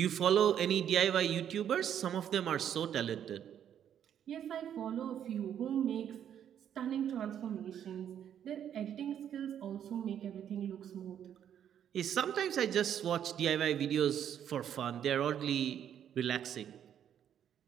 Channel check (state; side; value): quieter; left; 9.5 dB